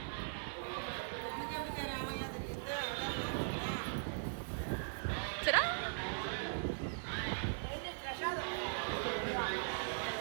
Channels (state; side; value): silent; left; digital silence